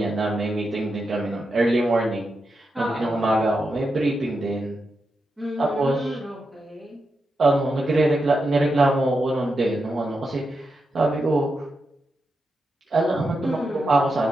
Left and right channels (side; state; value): both; normal; correlation 0.87